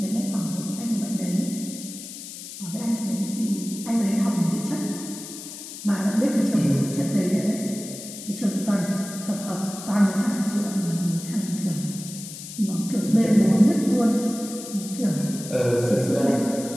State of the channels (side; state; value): left; noise; hiss, 11 dB below the sound